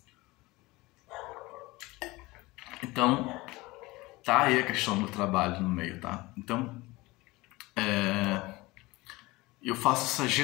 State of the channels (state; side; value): quieter; right; 21.4 dB